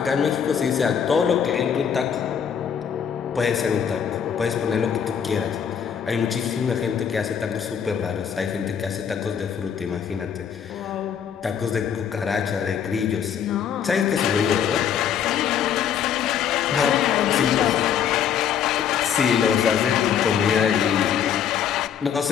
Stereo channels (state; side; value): quieter; right; 8.2 dB